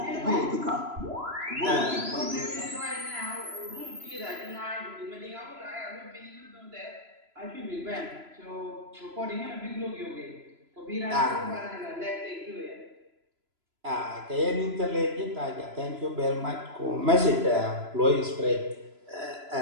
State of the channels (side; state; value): left; late; 3.0 ms